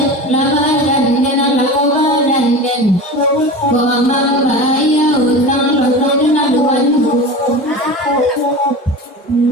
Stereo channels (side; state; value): both; normal; correlation 0.31